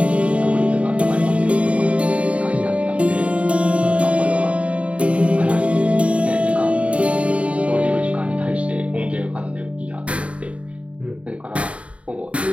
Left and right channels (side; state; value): left; late; 0.063 ms